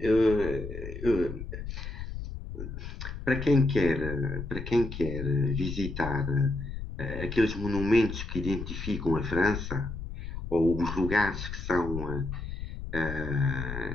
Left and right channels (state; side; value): noise; left; rumble, 8 dB below the sound